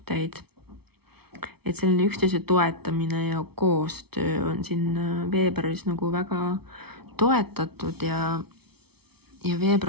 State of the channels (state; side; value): late; left; 0.96 ms